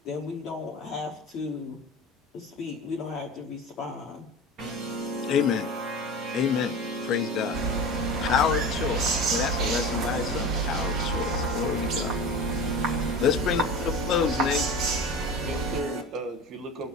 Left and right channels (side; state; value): both; normal; correlation 0.32